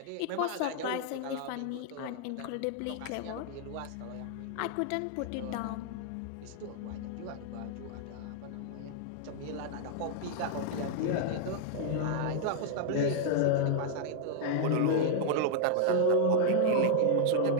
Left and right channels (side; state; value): both; different; correlation -0.01